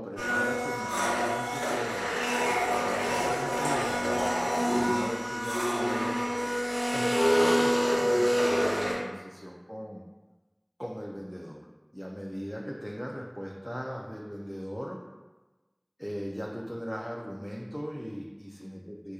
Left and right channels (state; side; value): identical; both; correlation 1.00